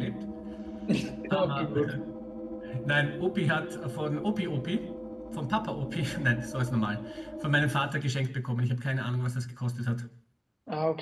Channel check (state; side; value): identical; both; correlation 1.00